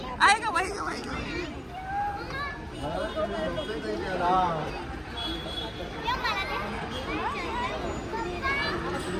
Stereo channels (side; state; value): both; identical; correlation 1.00